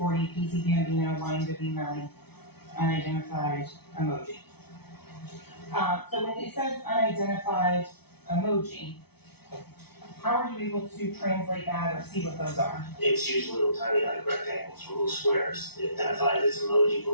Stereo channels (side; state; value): right; late; 0.97 ms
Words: PC Gambino, YNW Melly, unidentified emoji. So when it says unidentified emoji, how are you able to translate that or see what those are? It's usually little tiny like rectangles or little squares. It identifies as emoji,